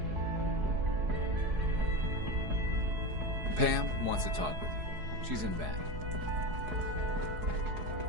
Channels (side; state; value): left; late; 4.7 ms